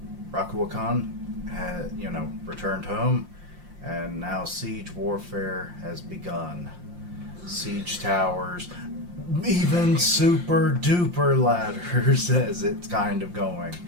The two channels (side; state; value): left; late; 5.7 ms